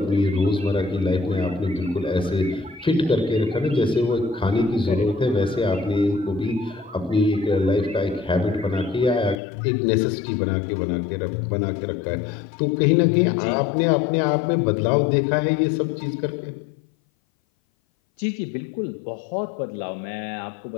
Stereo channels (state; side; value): drops out; right; at 9.3 s